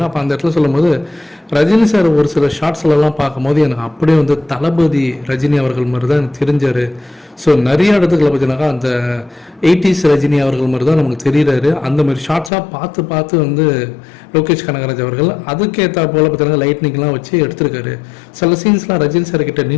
அப்போ அந்த இடத்துல சொல்லும்போது ரஜினி சார் ஒரு சில ஷார்ட்ஸ்லாம் பார்க்கும்போது எனக்கு அப்படியே வந்து தளபதி ரஜினி அவர்கள் மாதிரி தான் எனக்கு தெரிஞ்சார். ஸோ நிறைய இடத்துக்களை பார்த்தீங்கன்னாக்கா அந்த 80s ரஜினி அவர்கள் மாதிரி தான் நமக்கு தெரிகிறாரு. அந்த மாதிரி ஷார்ட்ஸாக பார்த்து வந்து லோகேஷ் கனகராஜ் அவர்கள் அதுக்கேற்ற போல் பார்த்தீங்கன்னா லைட்னிங்லாம் வச்சு எடுத்திருக்காரு. சில சீன்ஸ்லாம் ரஜினி சார் கிட்ட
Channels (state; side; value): drops out; right; at 12.5 s